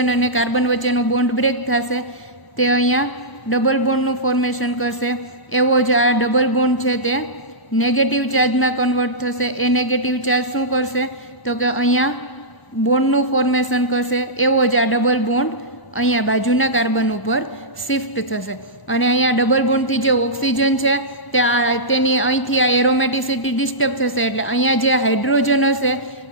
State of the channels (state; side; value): late; right; 1.0 ms